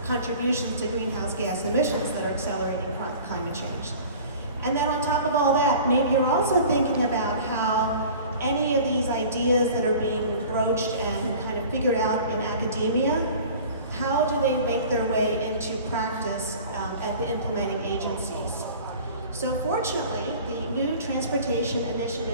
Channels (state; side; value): inverted; both; correlation -0.43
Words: contributions to greenhouse gas emissions that are accelerating climate change. And then on top of all that, maybe you're also thinking about how any of these ideas that are being broached and kind of figured out in academia how do they make their way into practice at the implementing agencies? So fortunately, the new Transportation